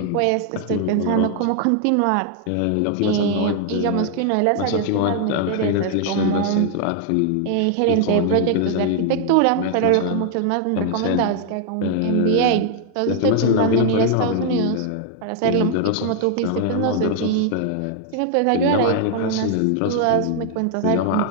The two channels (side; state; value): both; different; correlation 0.00